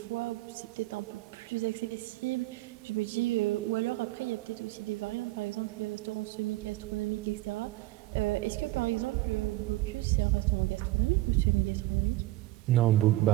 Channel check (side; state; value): left; quieter; 17.7 dB